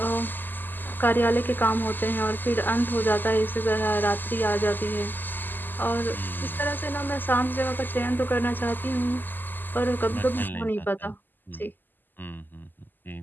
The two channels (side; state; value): right; late; 0.090 ms